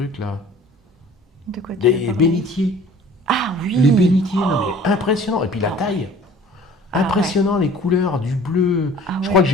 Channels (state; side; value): normal; both; correlation 0.48